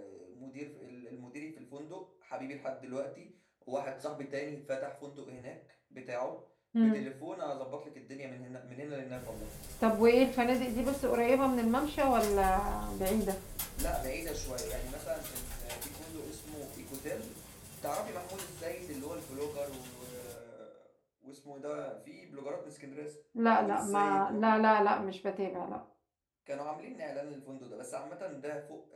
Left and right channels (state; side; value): identical; both; correlation 1.00